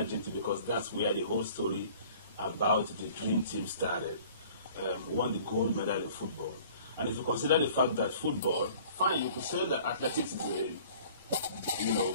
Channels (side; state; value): both; inverted; correlation -0.50